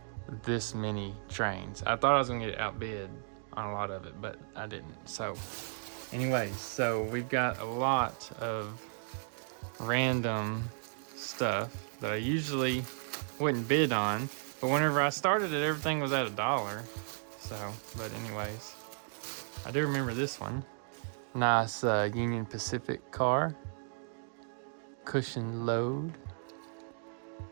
this many trains. I thought I was gonna get outbid on a lot of it, but I didn't. So anyways, so we've got a lot of random stuff that I usually wouldn't bid on, but whenever I started it, everything was at $1. So, but anyways, I do remember this one. Nice Union Pacific car. Cushion load.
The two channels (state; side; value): silent; left; digital silence